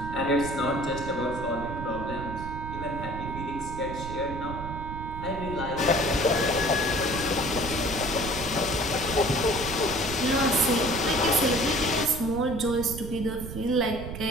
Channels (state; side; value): noise; right; rumble, 8 dB below the sound